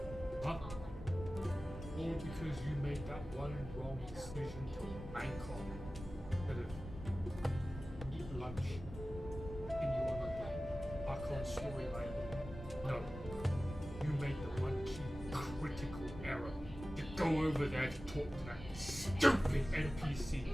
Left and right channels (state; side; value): normal; both; correlation 0.96